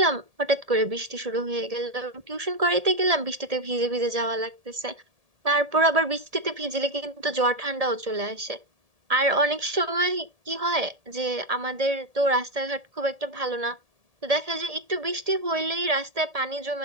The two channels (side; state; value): left; late; 1.7 ms